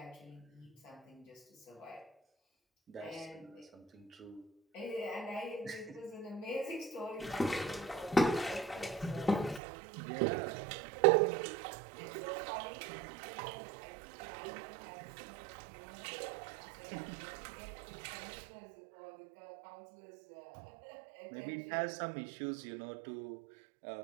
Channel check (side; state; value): left; drops out; at 9.6 s